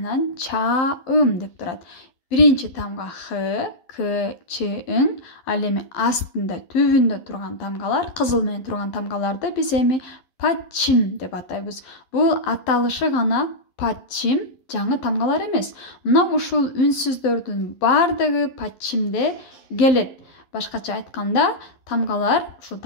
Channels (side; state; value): right; late; 12 ms